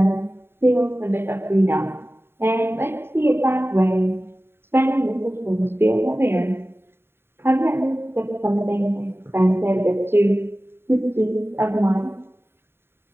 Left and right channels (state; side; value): late; left; 0.11 ms